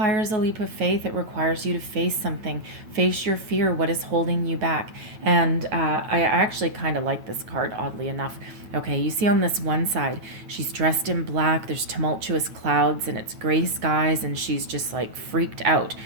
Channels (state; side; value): late; left; 9.1 ms